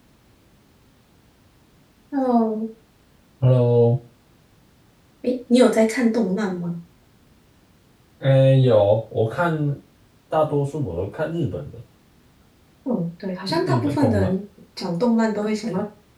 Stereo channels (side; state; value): both; identical; correlation 1.00